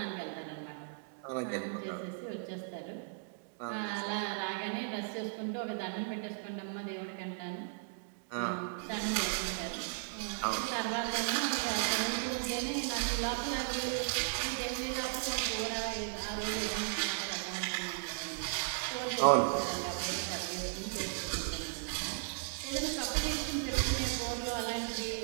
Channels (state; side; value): silent; left; digital silence